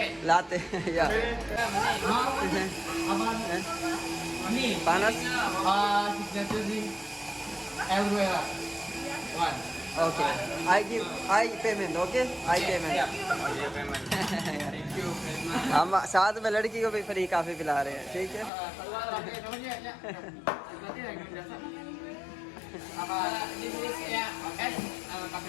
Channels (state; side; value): drops out; right; at 18.5 s